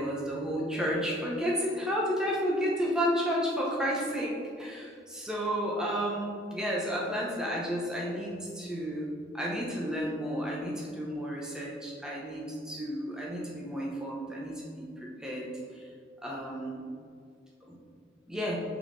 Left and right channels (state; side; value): normal; both; correlation 0.56